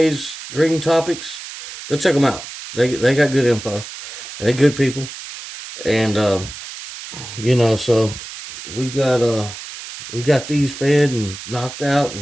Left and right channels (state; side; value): noise; right; hiss, 12 dB below the sound